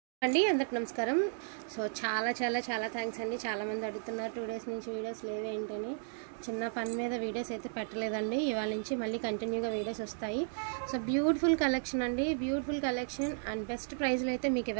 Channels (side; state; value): left; silent; digital silence